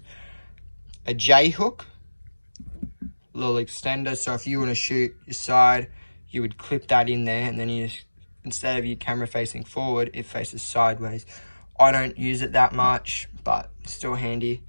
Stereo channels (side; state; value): both; inverted; correlation -1.00